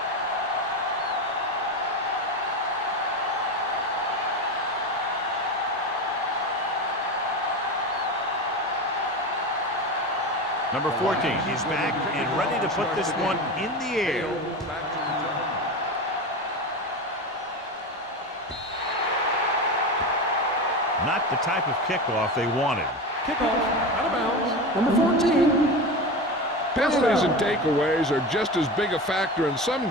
Number 14 is back and ready to put this one in the air. Not the type of kickoff they wanted. Kickoff out of bounds. Number 14. Penalties and takeaways are just as big a factor in some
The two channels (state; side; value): normal; both; correlation 0.23